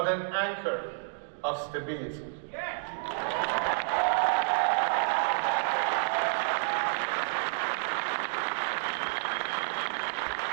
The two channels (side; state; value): left; silent; digital silence